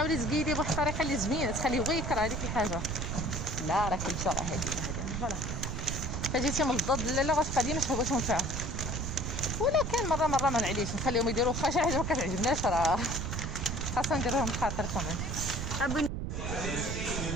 تقيدي بواحد الطريقه اللي زوينه تخليه هو يكره هذيك الحاجه لا راه كلشي راه هادي فوالا فجيتي من الضد لا غتبقى ديما شهوتهم فيها ولكن مره ما نعليش نخليهم يديروا واخا شي حاجه ما كتعجبناش راه خاصنا نديروهم بخاطر كمان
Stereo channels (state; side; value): noise; right; rumble, 3 dB below the sound